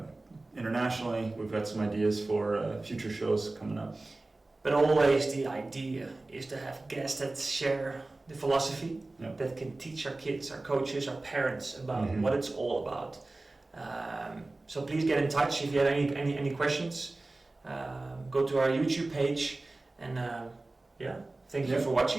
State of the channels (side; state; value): left; quieter; 3.0 dB